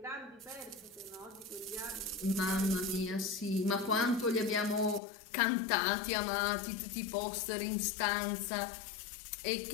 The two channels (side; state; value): right; drops out; at 5.0 s